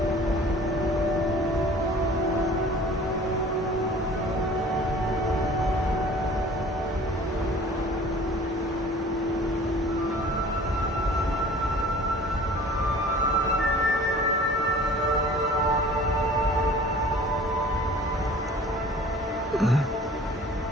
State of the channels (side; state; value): both; normal; correlation 0.46